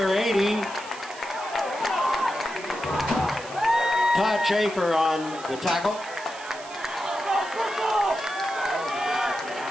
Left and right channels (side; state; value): right; noise; hiss, 16 dB below the sound